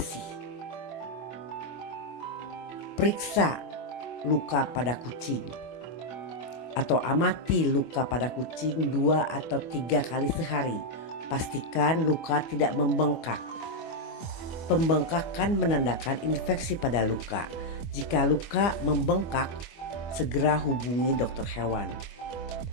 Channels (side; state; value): right; late; 25 ms